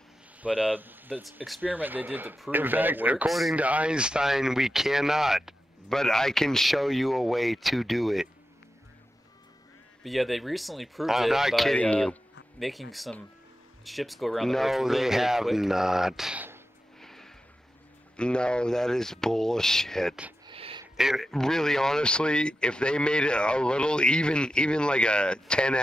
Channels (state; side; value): normal; both; correlation 0.91